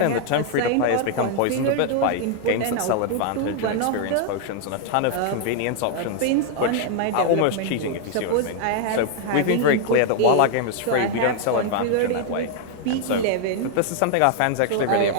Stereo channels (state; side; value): different; both; correlation 0.00